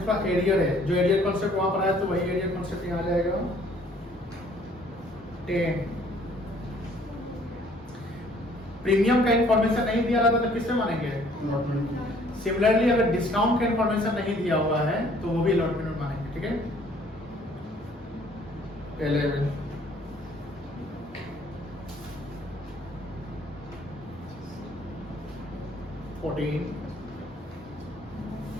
एरियर है, जो एरियर कॉन्सेप्ट वहां पर आया तो वही एरियर कॉन्सेप्ट यहाँ आ जाएगा। 10 प्रीमियम का इंफॉर्मेशन नहीं दिया रहता तो किससे मानेंगे? सिमिलरली अगर डिस्काउंट का इंफॉर्मेशन नहीं दिया हुआ है तो वो भी अलॉटमेंट में मानेंगे। ठीक है, 11 14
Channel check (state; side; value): normal; both; correlation 0.59